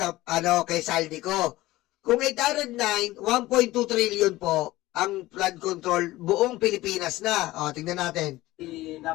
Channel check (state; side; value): quieter; right; 17.7 dB